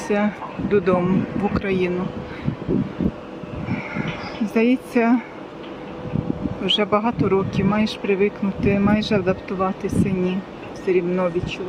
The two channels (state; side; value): identical; both; correlation 1.00